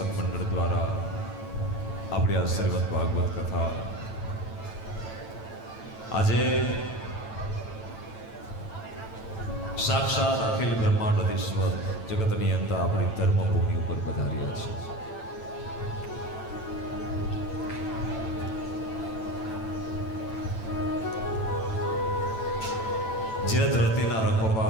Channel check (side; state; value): right; late; 9.0 ms